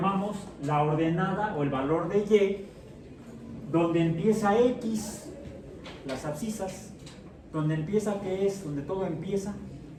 la ordenada o el valor de y, donde empieza x, las abscisas, donde empieza, ¿qué es? Donde todo empieza,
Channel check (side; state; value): both; identical; correlation 1.00